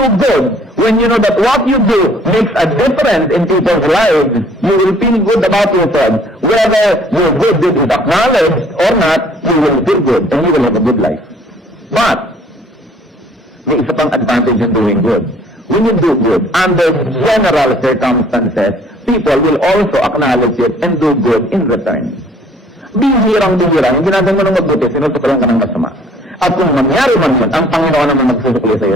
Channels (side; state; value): both; normal; correlation 0.57